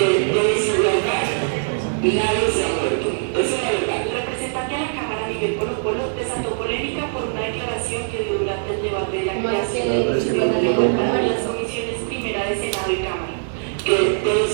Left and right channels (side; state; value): left; silent; 60 dB below the other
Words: de la Cámara, Miguel Polo Polo, desató polémica por una declaración que dio durante el debate de la creación de las comisiones primera de Senado y Cámara. De